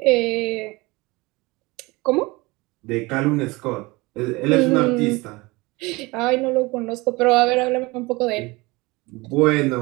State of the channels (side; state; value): left; quieter; 23.3 dB